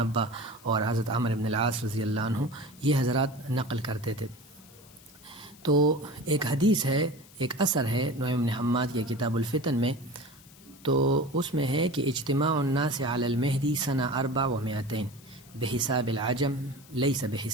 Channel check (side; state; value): left; noise; hiss, 23 dB below the sound